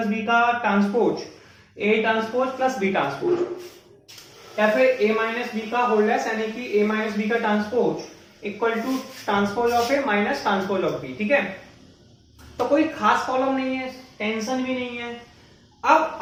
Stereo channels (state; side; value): identical; both; correlation 1.00